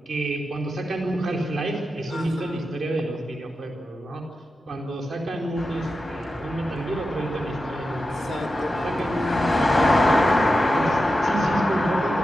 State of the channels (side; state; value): both; normal; correlation 0.91